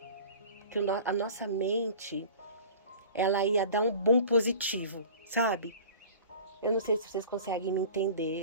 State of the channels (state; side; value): inverted; both; correlation -0.42